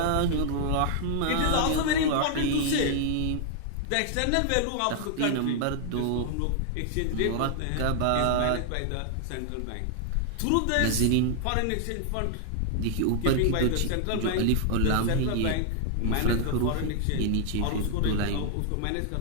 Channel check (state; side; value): different; both; correlation 0.00